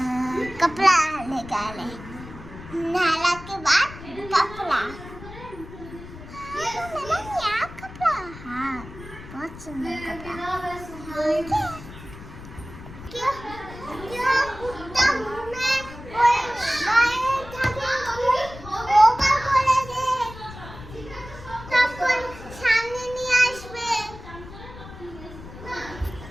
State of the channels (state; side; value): noise; left; rumble, 15 dB below the sound